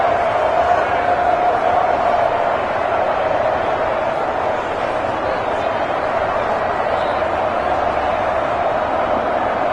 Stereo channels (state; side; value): identical; both; correlation 1.00